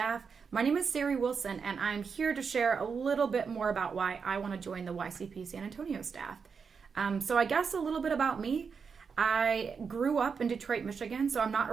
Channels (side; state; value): left; quieter; 5.8 dB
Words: my name is Sari Wilson and I'm here to share a little bit more about why I want to join the YCP San Antonio staff. So I guess a little bit about me. I grew up in Detroit, Michigan, so I'm not